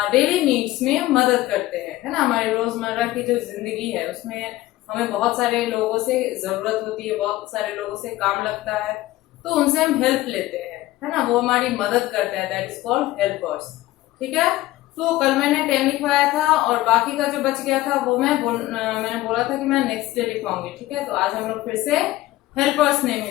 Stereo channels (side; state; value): right; quieter; 16.7 dB